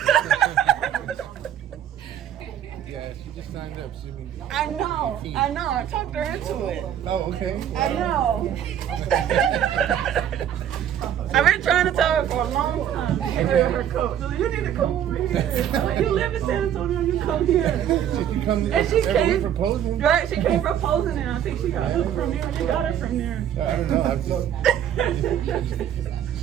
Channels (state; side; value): quieter; left; 10.0 dB